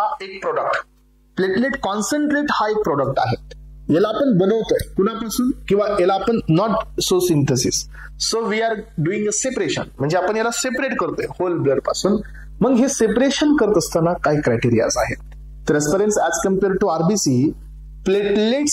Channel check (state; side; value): identical; both; correlation 1.00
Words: एक प्रोडक्ट, प्लेटलेट कॉन्सन्ट्रेट हा एक प्रोडक्ट आहे. याला आपण बनवतोय कुणापासून? किंवा याला आपण not so synthesis, so we are doing a separation, म्हणजे आपण याला सेपरेट करतोय होल ब्लड पासून. मग हे सेपरेशन करत असताना काही क्रायटेरियाज आहेत. तर aspirants as compare to RBC platelet